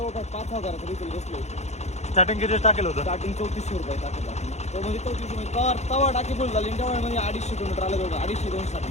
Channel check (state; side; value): late; right; 0.32 ms